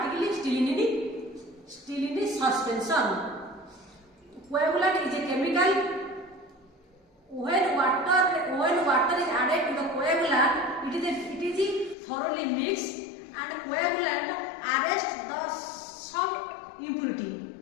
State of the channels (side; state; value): right; drops out; at 12.0 s